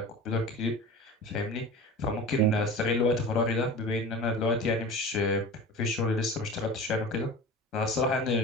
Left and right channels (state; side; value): normal; both; correlation 0.35